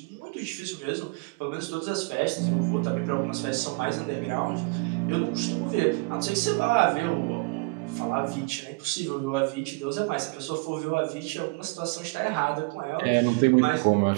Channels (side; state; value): left; quieter; 29.8 dB